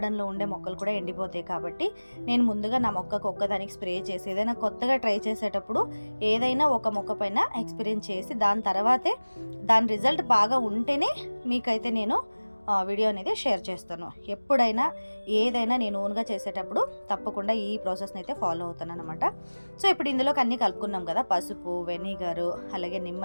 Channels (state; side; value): inverted; both; correlation -1.00